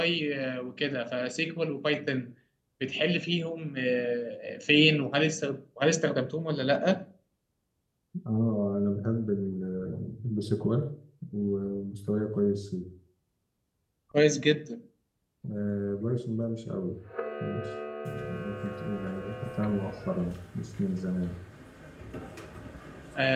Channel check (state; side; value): identical; both; correlation 1.00